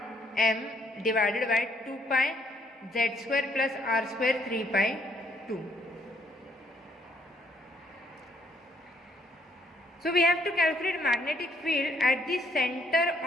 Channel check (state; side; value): normal; both; correlation 0.68